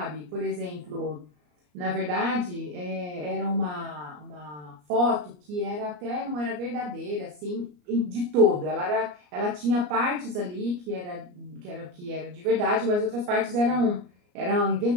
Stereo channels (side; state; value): left; late; 34 ms